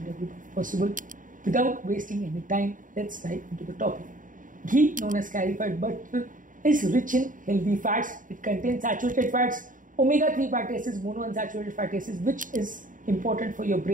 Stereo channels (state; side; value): late; left; 0.38 ms